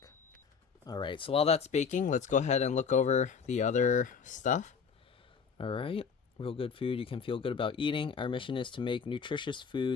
Alright, so while that's baking, let's go ahead and look over the other stuff. Alright, real good food you can feel good about eating. Our mission is to make nutritious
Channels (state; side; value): quieter; right; 6.1 dB